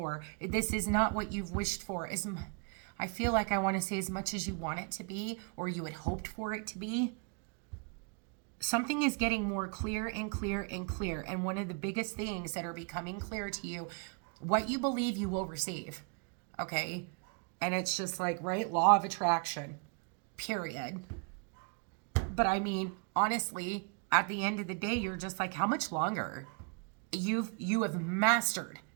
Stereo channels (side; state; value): left; quieter; 35.6 dB